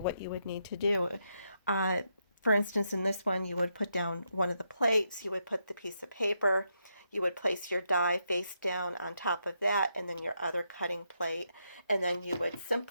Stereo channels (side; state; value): both; inverted; correlation -0.81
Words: you would need to do. For instance, in this one, you would put down one of the plates, you would put the piece of paper, you would place your die face down on top of that, and then your other cutting plate, and then you would